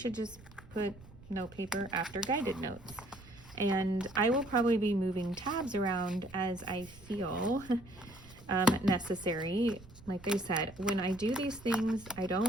just put note paper after guided notes. And I will probably be moving tabs around as I feel necessary. Like I said, when I do these things, I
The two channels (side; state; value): right; noise; rumble, 20 dB below the sound